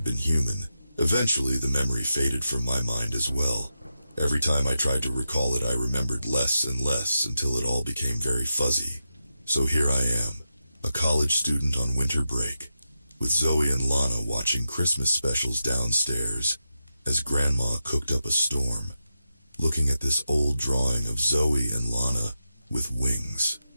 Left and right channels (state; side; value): inverted; both; correlation -0.88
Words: been human. Eventually, the memory faded from my mind as well. Every time I tried to recall it, I remembered less and less until it all became very fuzzy. So here I am, a college student on winter break, with Zoe and Lana watching Christmas specials downstairs as Grandma cooked up a storm, looking at this old drawing of Zoe and Lana with wings.